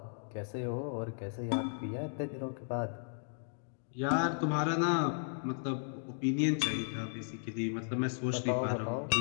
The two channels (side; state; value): right; silent; digital silence